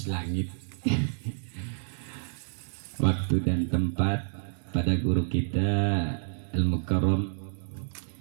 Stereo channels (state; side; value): silent; left; digital silence